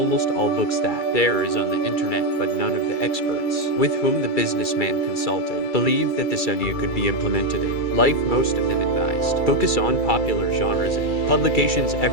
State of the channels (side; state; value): right; late; 2.3 ms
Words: all books that there is on the internet, but none of the experts with whom the businessman consulted believed that this idea could be implemented in life. Most of them advised focus on popular genres and publications.